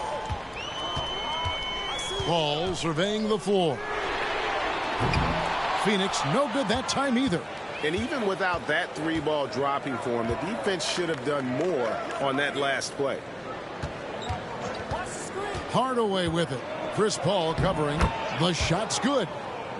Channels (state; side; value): identical; both; correlation 1.00